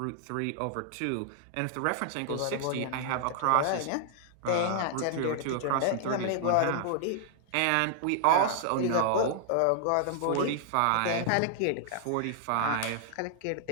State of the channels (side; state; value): both; different; correlation -0.01